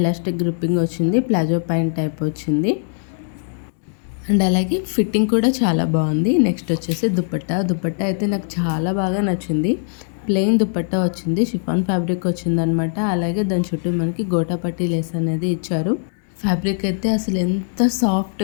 గ్రిప్పింగ్ వచ్చింది, ప్లాజో ప్యాంట్ టైప్ వచ్చింది. అండ్ అలాగే ఫిట్టింగ్ కూడా చాలా బాగుంది. నెక్స్ట్ వచ్చేసి దుపట్టా అయితే నాకు చాలా బాగా నచ్చింది. ప్లెయిన్ దుపట్టా వచ్చింది, షిఫాన్ ఫ్యాబ్రిక్ వచ్చిందనమాట. అలాగే దాని చుట్టూ మనకి గోటాపట్టి లేస్ అనేది ఇచ్చారు. ఫ్యాబ్రిక్ అయితే అసలు ఎంత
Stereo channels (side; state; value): right; silent; 65 dB below the other